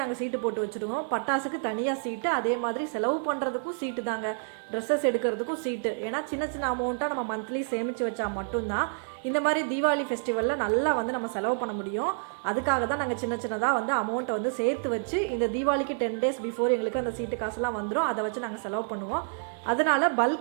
நாங்கள் சீட்டு போட்டு வச்சுருவோம். பட்டாசுக்கு தனியாக சீட்டு, அதே மாதிரி செலவு பண்ணுறதுக்கும் சீட்டு தாங்க, ட்ரெஸ்ஸஸ் எடுக்கிறதுக்கும் சீட்டு. ஏன்னா சின்ன சின்ன அமௌண்ட்டாக நம்ம மந்த்லி சேமித்து வச்சா மட்டும்தான் இந்த மாதிரி தீபாவளி ஃபெஸ்டிவலில் நல்லா வந்து நம்ம செலவு பண்ண முடியும். அதுக்காக தான் நாங்கள் சின்ன சின்னதாக வந்து அமௌண்ட்டை வந்து சேர்த்து வச்சு இந்த தீபாவளிக்கு 10 days பிஃபோர் எங்களுக்கு அந்த சீட்டு காசுலாம் வந்துடும். அதை வச்சு நாங்கள் செலவு பண்ணுவோம். அதனால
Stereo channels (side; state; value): left; silent; 59 dB below the other